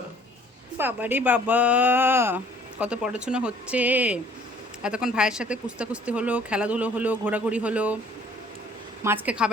বাবারে বাবা, কত পড়াশোনা হচ্ছে। এতক্ষণ ভাইয়ের সাথে কুস্তি হলো, খেলাধুলো হলো, ঘোরাঘুরি হলো, মাছকে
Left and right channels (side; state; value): both; normal; correlation 0.56